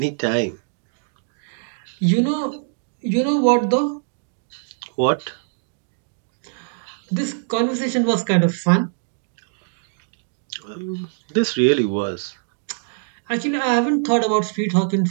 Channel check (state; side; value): silent; left; digital silence